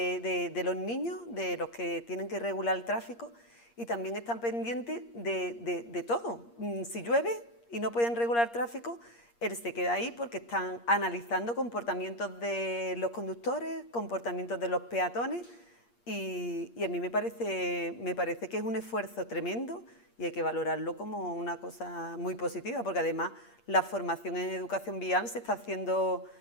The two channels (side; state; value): right; late; 8.5 ms